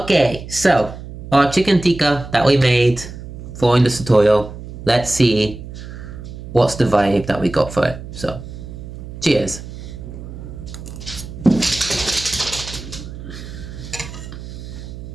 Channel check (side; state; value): right; noise; hum, 12 dB below the sound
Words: so our chicken tikka that we made following this tutorial. Let's see what's the vibe that we got for it. So, cheers.